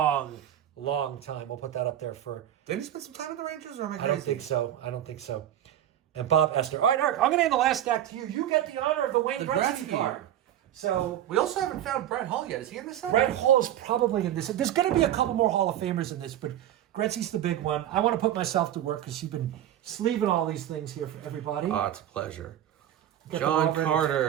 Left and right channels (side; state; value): left; quieter; 11.6 dB